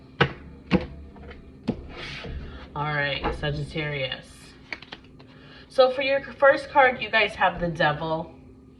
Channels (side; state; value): both; identical; correlation 1.00